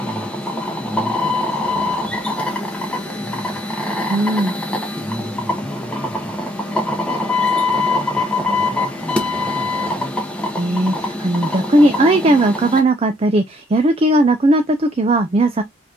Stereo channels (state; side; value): normal; both; correlation 0.67